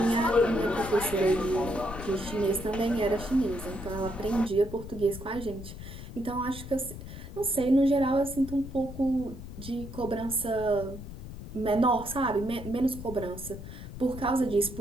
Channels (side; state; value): left; noise; rumble, 11 dB below the sound